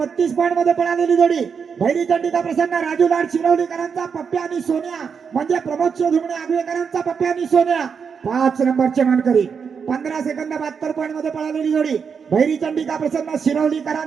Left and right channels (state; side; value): quieter; left; 6.3 dB